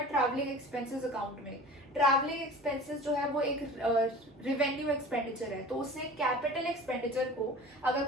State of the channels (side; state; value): both; normal; correlation 0.40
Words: ट्रैवलिंग एक्सपेंसेस अकाउंट में. ट्रैवलिंग एक्सपेंसेस जो है वो एक रिवेन्यू एक्सपेंडिचर है, तो उसने कैपिटल एक्सपेंडिचर को, अगर